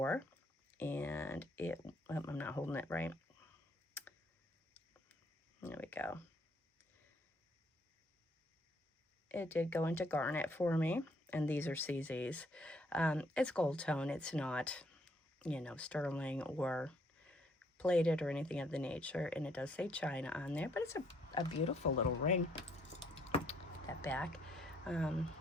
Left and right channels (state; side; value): normal; both; correlation 0.68